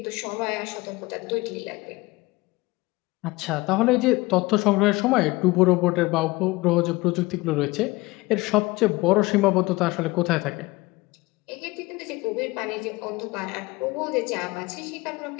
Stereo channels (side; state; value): right; quieter; 21.8 dB